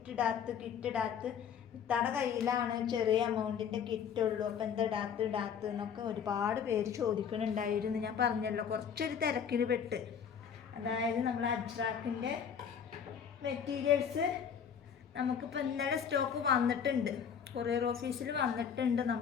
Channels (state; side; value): quieter; right; 7.6 dB